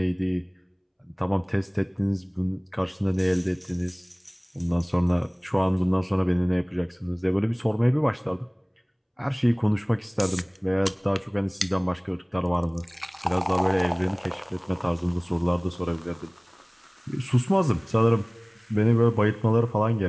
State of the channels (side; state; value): both; identical; correlation 1.00